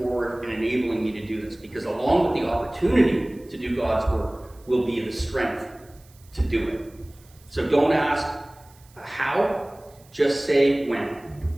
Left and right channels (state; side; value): noise; right; hiss, 28 dB below the sound